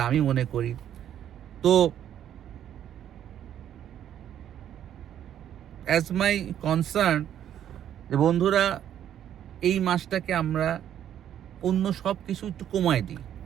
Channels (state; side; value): quieter; left; 10.4 dB